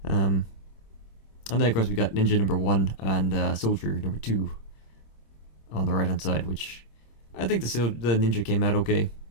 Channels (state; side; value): late; right; 26 ms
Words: And then, of course, we got Ninja number 1 and Soldier number 2 on the right-hand side, which I think the Ninja came out okay.